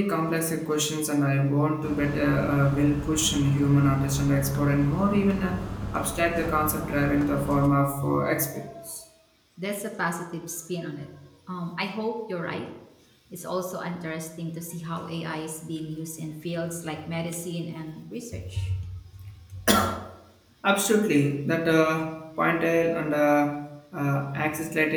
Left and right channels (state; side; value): identical; both; correlation 1.00